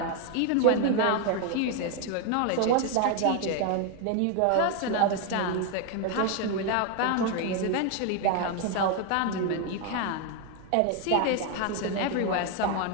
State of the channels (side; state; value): both; different; correlation 0.01